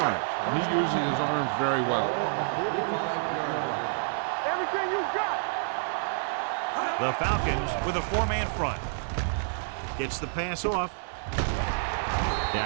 and he uses his arms very well. The Falcons with a 4-man front. Gets the pass off.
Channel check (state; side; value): silent; left; 55 dB below the other